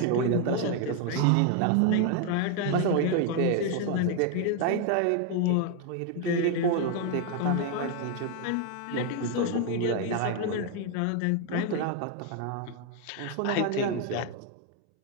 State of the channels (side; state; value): both; different; correlation 0.01